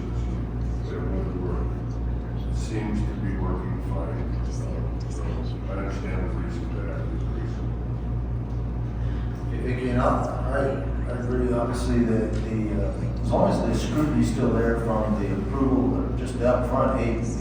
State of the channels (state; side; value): identical; both; correlation 1.00